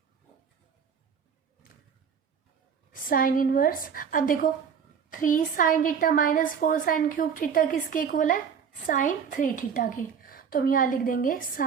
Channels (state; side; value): quieter; left; 7.0 dB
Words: Sine inverse, अब देखो 3 sine theta minus 4 sine cube theta किसके इक्वल है? साइन 3 थीटा के। तो हम यहाँ लिख देंगे